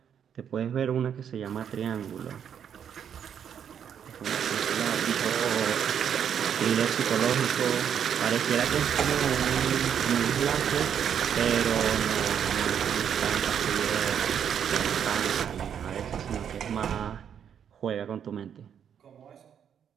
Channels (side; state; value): left; quieter; 8.4 dB